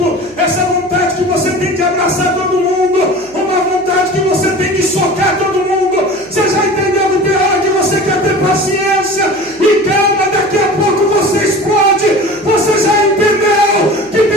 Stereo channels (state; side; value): noise; left; hum, 28 dB below the sound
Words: essa vontade que você tem de abraçar todo mundo, uma vontade que você tem de socar todo mundo, você já entendeu que tem hora que você quer ter paciência e calma, daqui a pouco você explode? Você já entendeu que